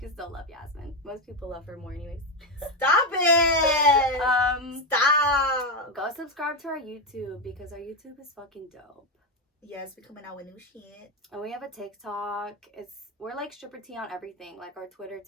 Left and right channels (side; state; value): both; normal; correlation 0.09